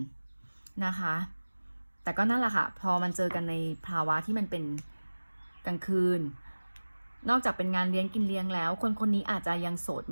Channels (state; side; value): inverted; both; correlation -1.00